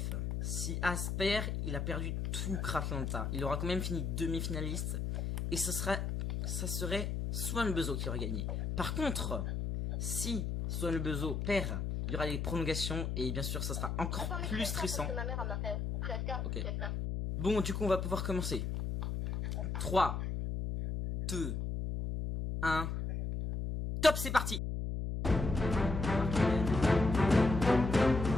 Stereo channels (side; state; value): left; noise; hum, 2 dB below the sound